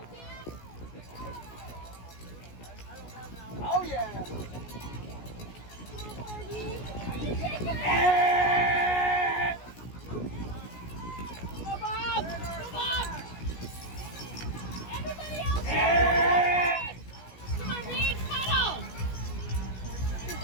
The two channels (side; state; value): right; late; 17 ms